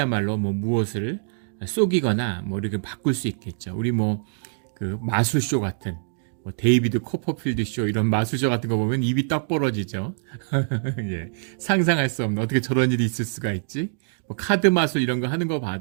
무엇을 속이거나 이렇게 바꿀 수 있겠죠. 우리 그 마술쇼 같은 데이비드 코퍼필드 쇼 이런 마술쇼 같은 거 보면 입이 떡 벌어지죠. 상상할 수 없는, 어떻게 저런 일이 있을 수가 있지? 카드 마술 이런 거 하는 거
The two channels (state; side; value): silent; left; digital silence